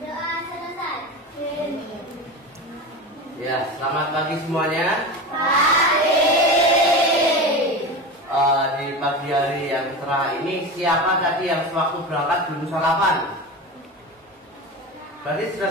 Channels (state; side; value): normal; both; correlation 0.26